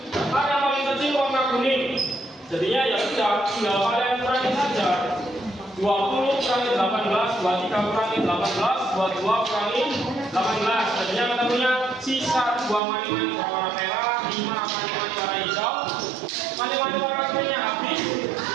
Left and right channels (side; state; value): left; drops out; at 12.8 s